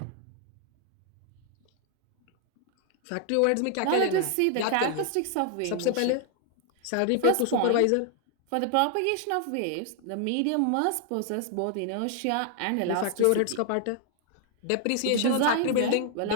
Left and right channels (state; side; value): different; both; correlation 0.00